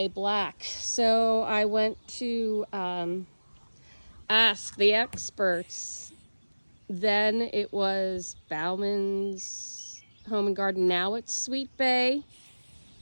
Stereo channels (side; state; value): both; inverted; correlation -1.00